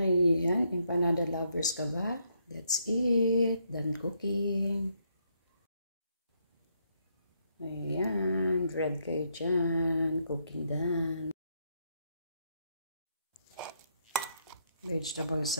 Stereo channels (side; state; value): both; inverted; correlation -0.75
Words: Ayan, empanada lovers ka ba? That's it. Done cooking. Ayan, bread kayo dyan. Cooking done. Vegetable